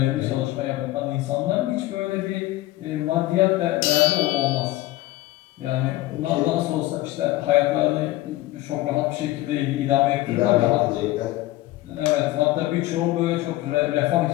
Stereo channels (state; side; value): quieter; right; 17.2 dB